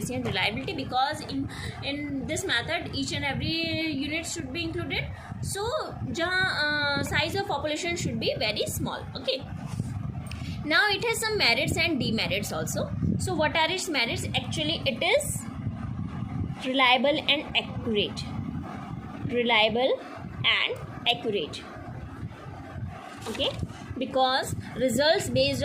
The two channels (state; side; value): identical; both; correlation 1.00